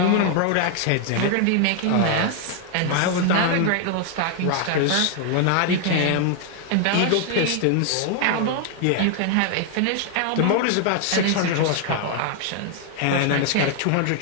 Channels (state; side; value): different; both; correlation 0.00